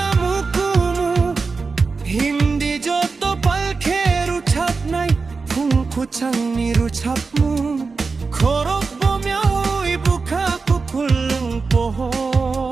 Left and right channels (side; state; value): left; quieter; 4.4 dB